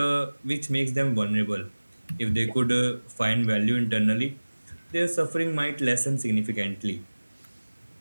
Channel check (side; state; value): both; inverted; correlation -1.00